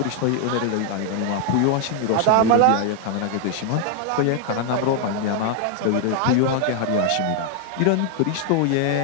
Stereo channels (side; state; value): both; different; correlation 0.00